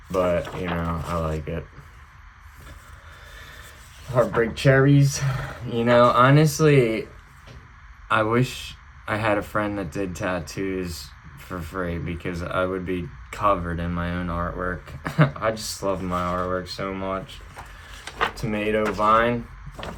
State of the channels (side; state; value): both; identical; correlation 1.00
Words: but I like it. Heartbreak cherries. Honestly, I wish I had a friend that did tattoos for free, because I would be covered in my own artwork. I just love my artwork so much. Tomato vine,